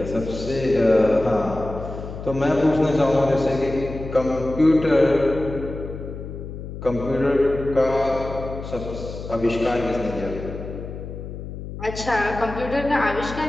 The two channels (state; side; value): noise; left; hum, 9 dB below the sound